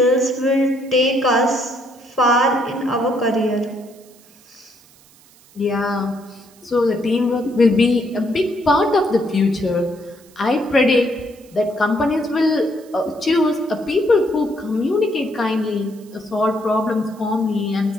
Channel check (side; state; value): right; noise; hiss, 27 dB below the sound